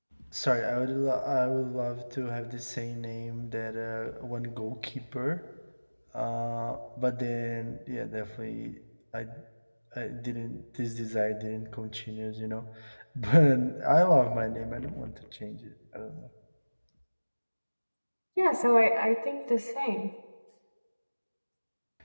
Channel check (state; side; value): inverted; both; correlation -1.00